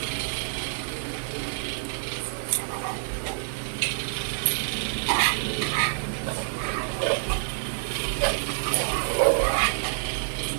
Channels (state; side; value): silent; left; 60 dB below the other